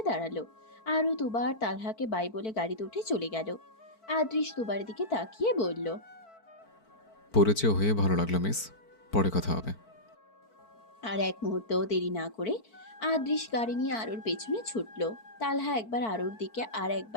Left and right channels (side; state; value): right; late; 4.5 ms